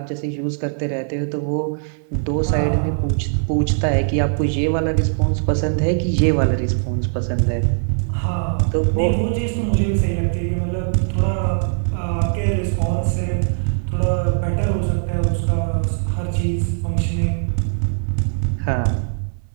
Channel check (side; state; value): left; silent; digital silence